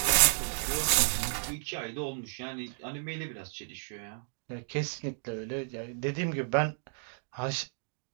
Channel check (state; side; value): silent; left; digital silence